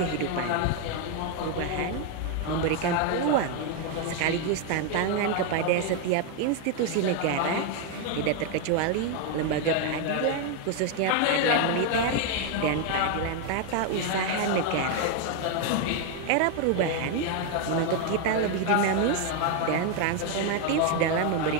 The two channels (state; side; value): different; both; correlation 0.01